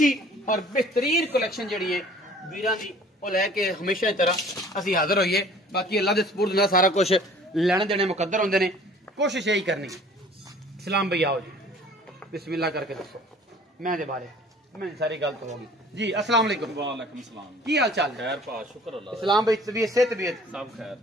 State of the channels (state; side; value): normal; both; correlation 0.51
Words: और बेहतरीन कलैक्शन जिहड़ी है वीरां दी ਉਹ ਲੈ ਕੇ ਹਮੇਸ਼ਾ ਦੀ ਤਰ੍ਹਾਂ ਅਸੀਂ ਹਾਜ਼ਰ ਹੋਈਏ। ਬਾਕੀ ਅੱਲਾ ਦੇ ਸਪੁਰਦ ਨਾਲ ਸਾਰਾ ਕੁਝ ਲੈਣ ਦੇਣੇ ਮੁਕੱਦਰ ਹੁੰਦੇ ਨੇ, ਕੋਸ਼ਿਸ਼ ਇਹੀ ਕਰਨੀ। ਸਲਾਮ ਭਈ ਆਓ ਜੀ, ਬਿਸਮਿਲ੍ਲਾ ਕਰਕੇ ਦੱਸੋ ਮੈਂ ਦੇ ਬਾਰੇ मैं सारी गल तो होगी जी। अस्सलाम वालेकुम। वालेकुम सलाम। की हाल चाल खैर पा शुक्र अल्लाह। इस्लाम भाई तबीयत से तबीयत सब खैर